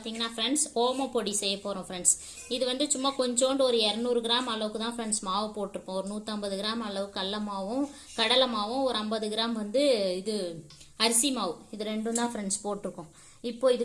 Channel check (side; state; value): both; identical; correlation 1.00